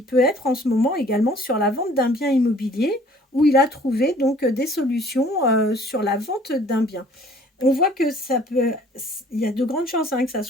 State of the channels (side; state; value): both; normal; correlation 0.55